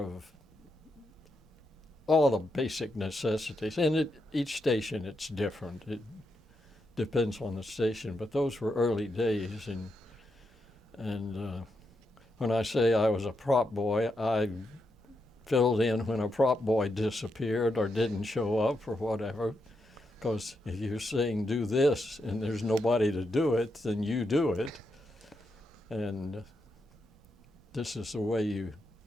all the basic necessities. And each station, it's different. It depends on the station. But those were early days. And when I say I was a prop boy, I filled in when a prop boy disappeared or didn't show up or whatever. Because if you're saying do this and there's nobody to do it, then you do it. And this is the way you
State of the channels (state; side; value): normal; both; correlation 0.83